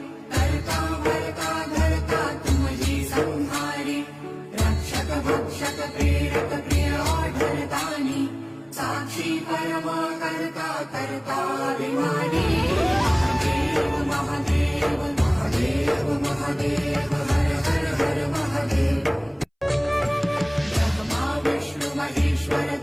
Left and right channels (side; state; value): both; identical; correlation 1.00